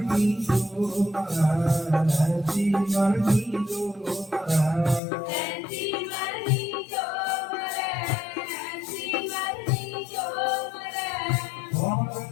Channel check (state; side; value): drops out; right; at 5.0 s